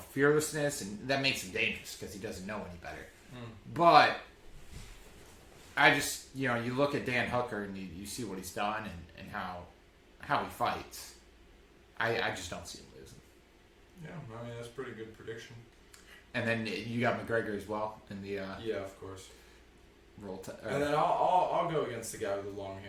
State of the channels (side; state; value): both; identical; correlation 1.00